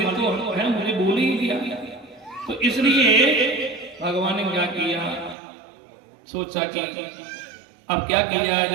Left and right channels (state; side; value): drops out; left; at 5.4 s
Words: तो है मुझे बोल ही दिया। तो इसलिए भगवान ने क्या किया, सोचा कि अब क्या किया